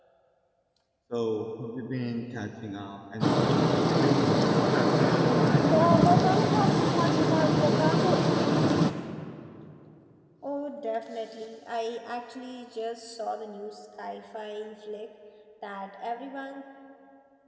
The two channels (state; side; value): identical; both; correlation 1.00